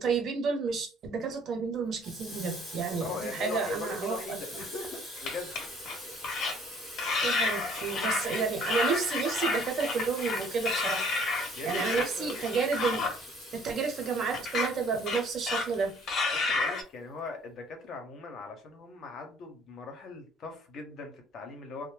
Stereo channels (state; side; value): normal; both; correlation 0.57